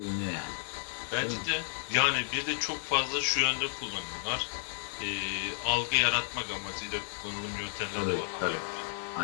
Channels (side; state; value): right; silent; digital silence